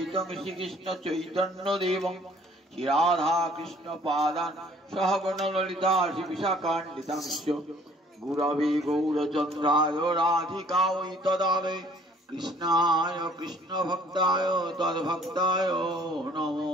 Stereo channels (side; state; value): both; normal; correlation 0.57